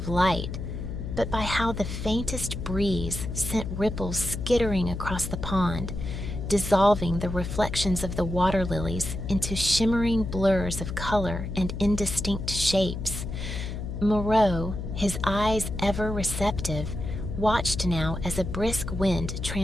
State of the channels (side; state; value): left; noise; hum, 6 dB below the sound